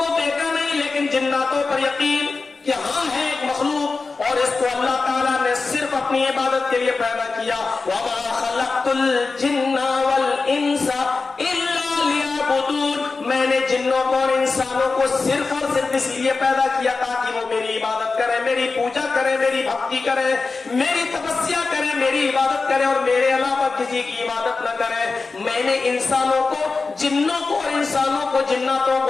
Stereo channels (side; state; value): right; quieter; 4.1 dB